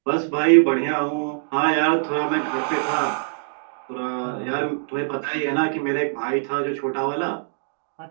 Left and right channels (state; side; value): silent; left; digital silence